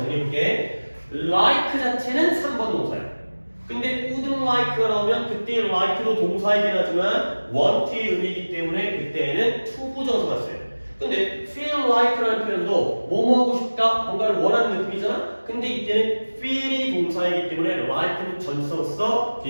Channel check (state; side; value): inverted; both; correlation -1.00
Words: like 자체는 3번 동사예요. 근데 wouldn't like가 나오면 그때 like도 동사이긴 하지만 want의 의미이기 때문에 그때는 투부정사가 써요. 근데 feel like라는 표현도 뭐뭐 하고 싶다, 뭔가를 원하는 느낌이잖아? 근데 이때는 feel이 동사이기 때문에 like는 전치사로서